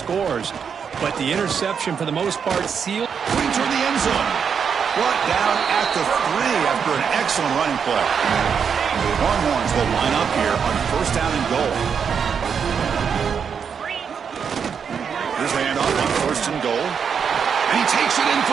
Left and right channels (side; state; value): left; quieter; 6.8 dB